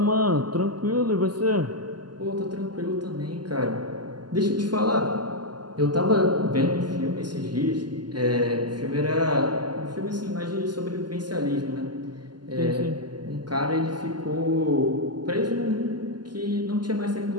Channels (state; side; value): late; left; 0.71 ms